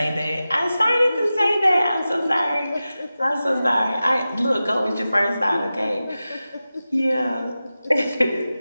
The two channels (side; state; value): both; inverted; correlation -0.95